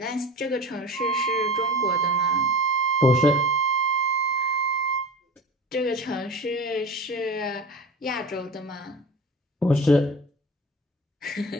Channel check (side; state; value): both; normal; correlation 0.34